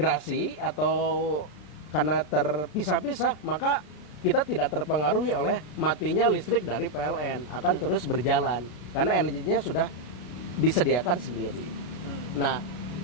atau karena terpisah-pisah, maka kita tidak terpengaruhi oleh matinya listrik dari PLN, akan terus berjalan karena energinya sudah disediakan sendiri. Nah,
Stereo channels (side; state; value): right; late; 33 ms